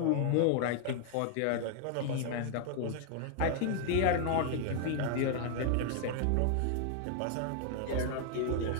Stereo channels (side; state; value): both; different; correlation 0.00